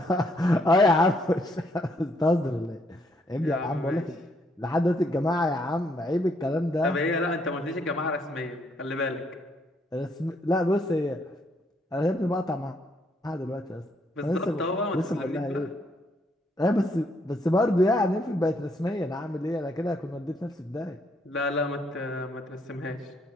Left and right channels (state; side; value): normal; both; correlation 0.71